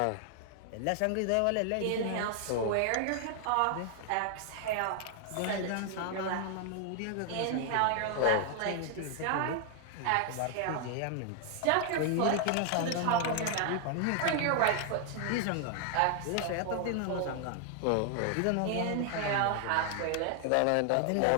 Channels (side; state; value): both; different; correlation 0.00